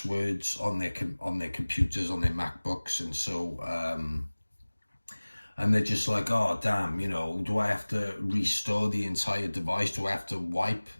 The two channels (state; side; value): inverted; both; correlation -1.00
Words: on their computers, on their MacBooks, and so and they're just like, oh damn, do I have to restore the entire device? Do I have to wipe